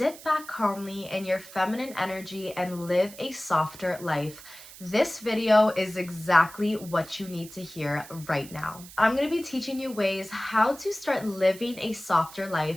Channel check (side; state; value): right; noise; hiss, 17 dB below the sound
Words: back calmly in your feminine energy and live a softer life, this video is exactly what you need to hear right now. I'm going to be teaching you ways how to start living a softer